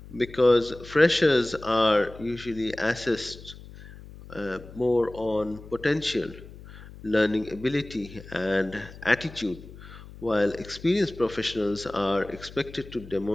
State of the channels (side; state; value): left; noise; hum, 17 dB below the sound